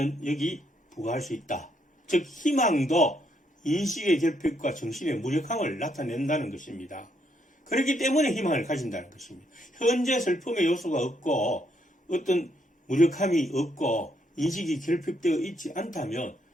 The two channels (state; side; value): normal; both; correlation 0.74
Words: 여기 부과할 수 있다. 즉 희망도 인식의 결핍과 정신의 무력함을 나타낸다는 것입니다. 그렇기 때문에 희망을 가진다는 것입니다. 현재 슬픔의 요소가 없고 어떤 무력함이 없고 인식이 결핍되어 있지 않다면